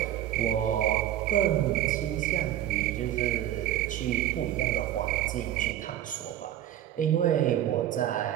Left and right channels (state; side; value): quieter; left; 12.1 dB